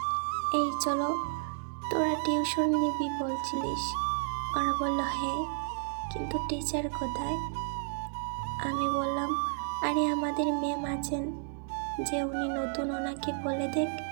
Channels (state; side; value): silent; left; 57 dB below the other